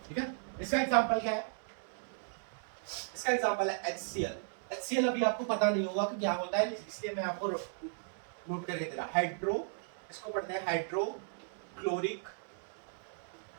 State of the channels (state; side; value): silent; left; digital silence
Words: ठीक है। इसका एग्जांपल क्या है? इसका एग्जांपल है HCl। अभी आपको पता नहीं होगा कि क्या होता है, इसलिए मैं आपको नोट करके दे रहा। इसको पढ़ते हैं हाइड्रोक्लोरिक